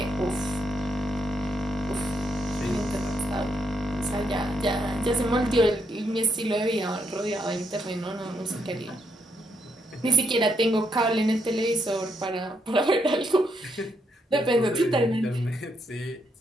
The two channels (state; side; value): normal; both; correlation 0.76